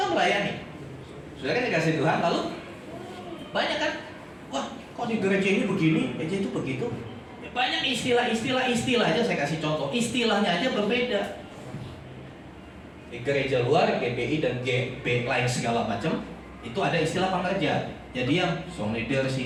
melayani. Sudah kan dikasih Tuhan, lalu banyak kan? Wah, kok di gereja ini begini, gereja itu begitu. Ya, banyak istilah aja saya kasih contoh. Istilahnya aja berbeda. Di gereja luar, GBI dan GB lain segala macam, itu ada istilah pengerja. Jadi yang song leader,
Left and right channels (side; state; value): both; identical; correlation 1.00